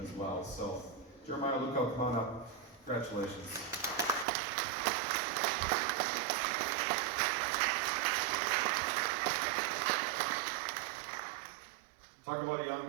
well. So, Jeremiah Luco, come on up. Congratulations. Talk about a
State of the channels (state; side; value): drops out; left; at 4.2 s